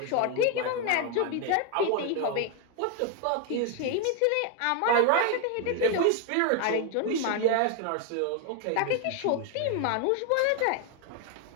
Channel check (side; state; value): both; different; correlation 0.01